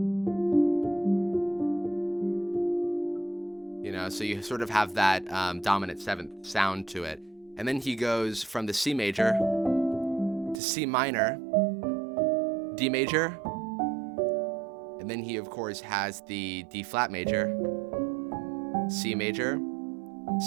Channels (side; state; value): left; drops out; at 10.6 s